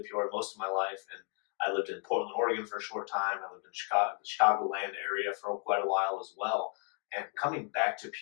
Peoria most of my life, and I lived in Portland, Oregon for a short time. I lived in the Chicagoland area for quite a while as well. And coming back to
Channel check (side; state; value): right; quieter; 38.8 dB